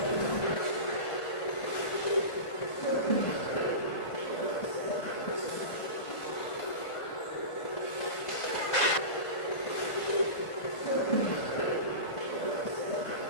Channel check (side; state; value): right; late; 1.5 ms